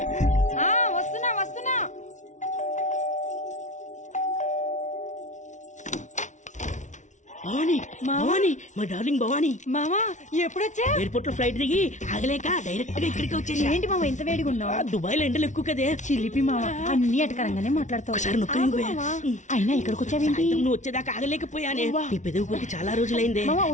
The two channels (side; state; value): right; late; 0.36 ms